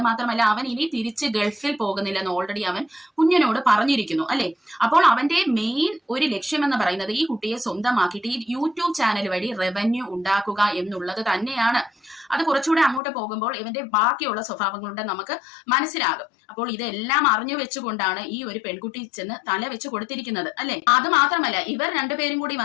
മാത്രമല്ല അവൻ ഇനി തിരിച്ച് ഗൾഫിൽ പോകുന്നില്ലെന്ന് ഓൾറെഡി അവൻ കുഞ്ഞിനോട് പറഞ്ഞിരിക്കുന്നു അല്ലെ. അപ്പോൾ അവന്റെ മെയിൻ ഒരു ലക്ഷ്യം എന്ന് പറയുന്നത് ഈ കുട്ടിയെ സ്വന്തമാക്കിയിട്ട് ഈ യൂട്യൂബ് ചാനൽ വഴി റവന്യൂ ഉണ്ടാക്കുക എന്നുള്ളത് തന്നെയാണ്. അത് കുറച്ചുകൂടെ അങ്ങോട്ട് പോകുമ്പോൾ ഇവന്റെ ബാക്കിയുള്ള സ്വഭാവങ്ങളുടെ നമുക്ക് മനസ്സിലാകും. അപ്പോൾ ഇതെല്ലാം അറിഞ്ഞു വെച്ചുകൊണ്ടാണ് ഈ ഒരു പെൺകുട്ടി ചെന്ന് തല വെച്ച് കൊടുത്തിരിക്കുന്നത് അല്ലെ. അത് മാത്രമല്ല ഇവർ രണ്ടുപേരും കൂടി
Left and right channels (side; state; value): right; drops out; at 13.0 s